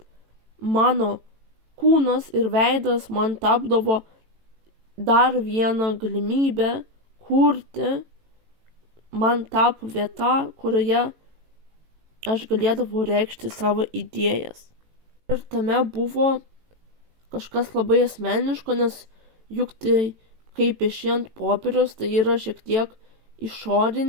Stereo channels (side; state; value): left; late; 18 ms